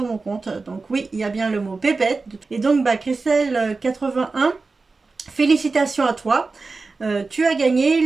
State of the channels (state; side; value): quieter; left; 3.9 dB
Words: mon compte. Donc oui, il y a bien le mot pépette. Et donc Christelle 81, félicitations à toi. Tu as